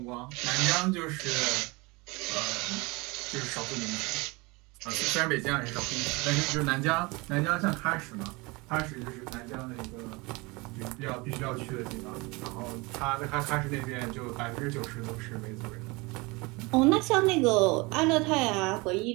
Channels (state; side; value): quieter; left; 25.5 dB